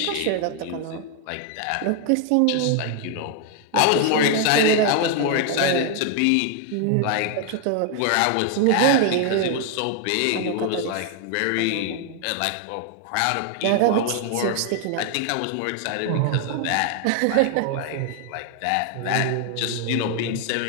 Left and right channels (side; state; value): both; different; correlation 0.00